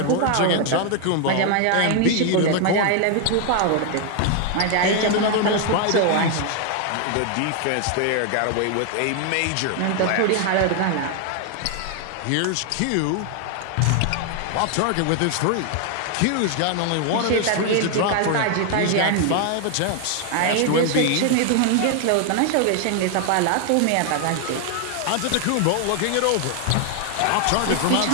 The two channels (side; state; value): both; different; correlation 0.00